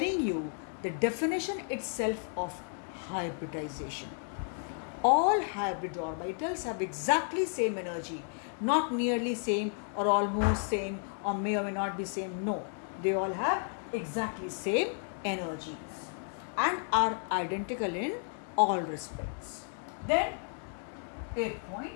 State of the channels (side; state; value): right; silent; 55 dB below the other